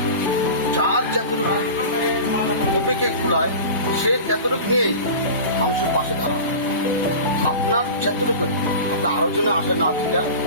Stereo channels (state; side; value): inverted; both; correlation -0.33